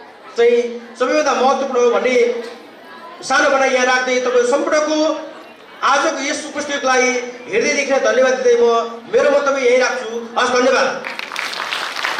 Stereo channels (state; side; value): identical; both; correlation 1.00